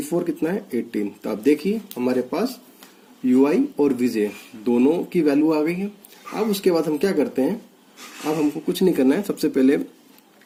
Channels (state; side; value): identical; both; correlation 1.00